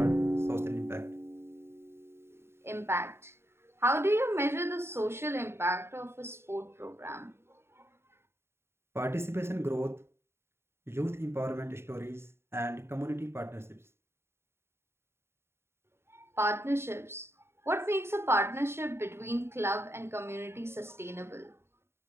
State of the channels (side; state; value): left; late; 0.12 ms